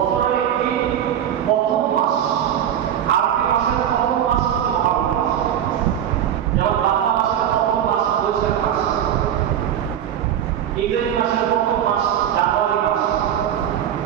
একটি প্রথম মাস, আরবি মাসের প্রথম মাস মহারম মাস, যেমন বাংলা মাসের প্রথম মাস বৈশাখ মাস, ইংরেজি মাসের প্রথম মাস জানুয়ারি মাস।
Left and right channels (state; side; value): quieter; left; 10.1 dB